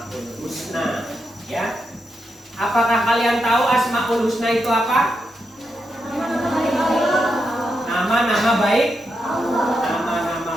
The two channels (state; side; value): normal; both; correlation 0.85